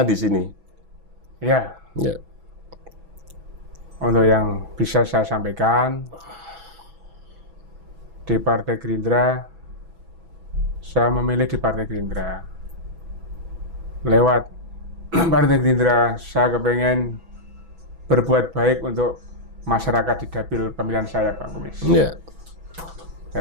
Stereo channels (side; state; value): left; late; 6.1 ms